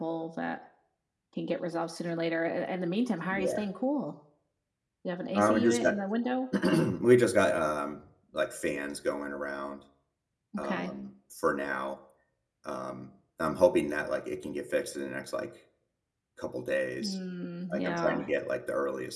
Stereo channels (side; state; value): both; identical; correlation 1.00